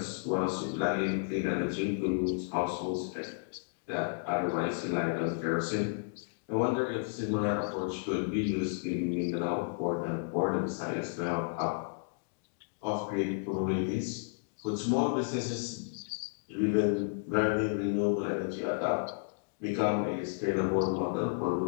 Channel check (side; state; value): right; silent; digital silence